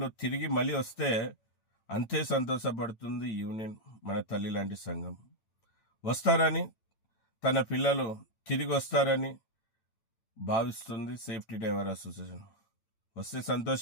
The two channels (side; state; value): right; late; 8.9 ms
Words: తిరిగి మళ్ళీ వస్తే అంతే సంతోషపడుతుంది యూనియన్, మన తల్లి లాంటి సంఘం. వస్తారని, తన పిల్లలు తిరిగి వస్తారని భావిస్తుంది సేఫ్టీ డ్రైవర్ అసోసియేషన్. వస్తే